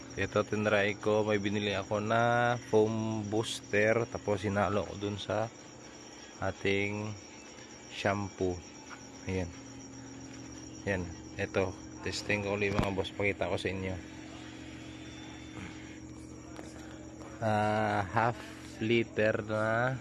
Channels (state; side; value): identical; both; correlation 1.00